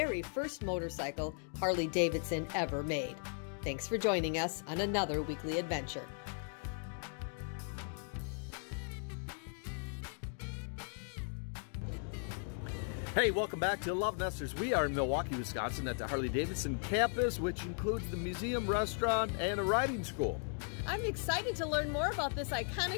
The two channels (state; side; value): silent; right; 53 dB below the other